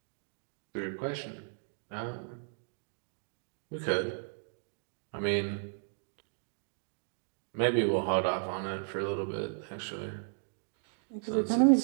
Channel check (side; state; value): left; silent; digital silence